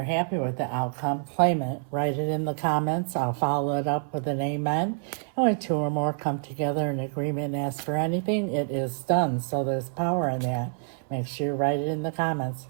happy with the outcome, claim it. Write it in the comments. I'll follow it up with an amen. And when two or more come together in agreement and ask for anything, it is done. So there's power in that. Make sure you write it in the comments.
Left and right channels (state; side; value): silent; left; 60 dB below the other